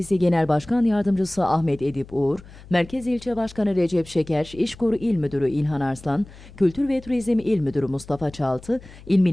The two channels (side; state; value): left; noise; hum, 20 dB below the sound